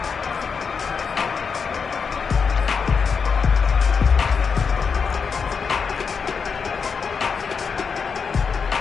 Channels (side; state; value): right; quieter; 5.8 dB